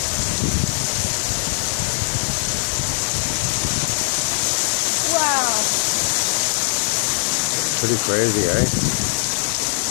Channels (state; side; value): silent; right; 57 dB below the other